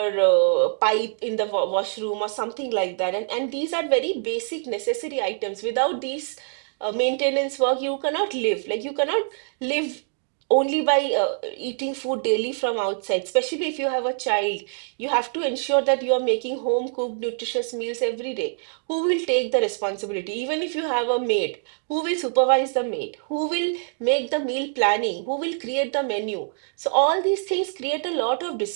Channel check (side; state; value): left; silent; digital silence